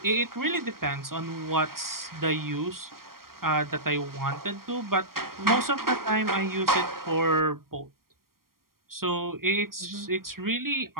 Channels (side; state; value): left; late; 0.92 ms